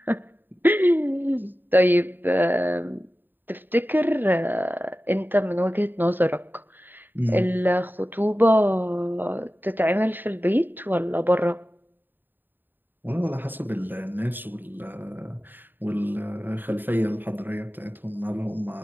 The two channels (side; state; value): left; late; 0.092 ms